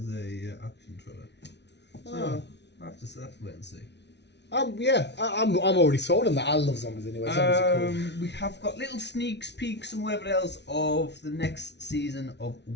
a action thriller. So Oh. I'll have to wait and see. I'm already sold on that. I love zombies anyway. Zombies are cool. We have got little sneaks peeks and whatever else of the next season of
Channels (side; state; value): right; late; 0.50 ms